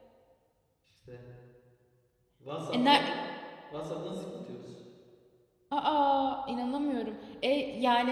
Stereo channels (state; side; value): identical; both; correlation 1.00